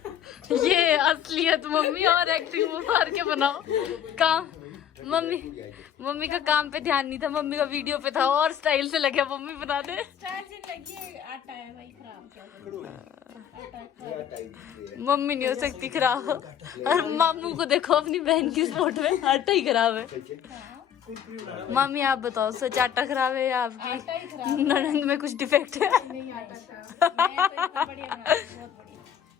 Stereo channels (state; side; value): quieter; right; 9.3 dB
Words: ये असलियत मम्मी और एक्टिंग मार के बनाओ काम। मम्मी का काम पे ध्यान नहीं था, मम्मी का वीडियो पे था और स्टाइल से लगे मम्मी बना दे। मम्मी नहीं हो सकती खराब, और मामू को देखो अपनी बहन की स्पोर्ट में आटा ही खराब है। मामी आप बताओ, सच आटा खराब है या आपकी ननद में कुछ डिफेक्ट है?